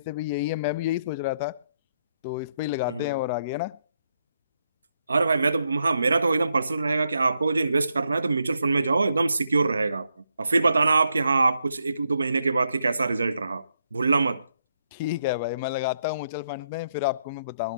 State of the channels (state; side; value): inverted; both; correlation -0.79